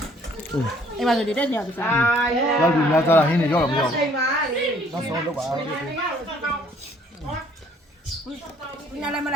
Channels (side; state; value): both; normal; correlation 0.61